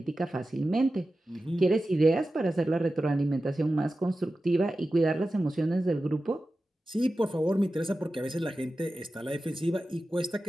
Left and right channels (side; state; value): both; normal; correlation 0.94